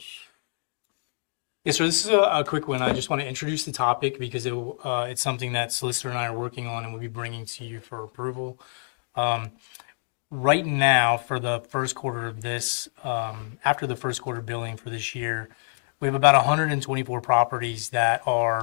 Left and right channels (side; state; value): right; silent; digital silence